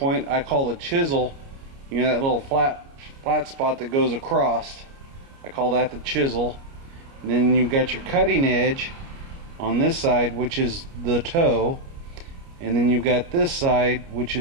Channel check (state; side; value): late; left; 29 ms